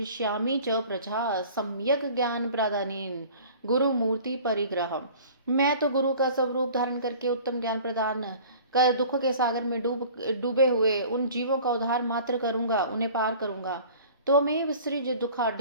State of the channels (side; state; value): both; inverted; correlation -0.46